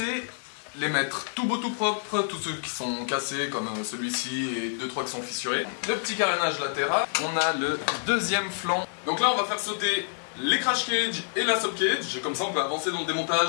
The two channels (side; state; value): right; silent; digital silence